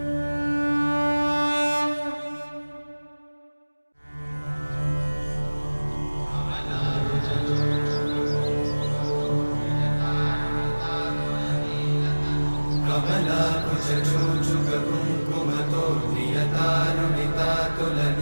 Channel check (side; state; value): both; inverted; correlation -1.00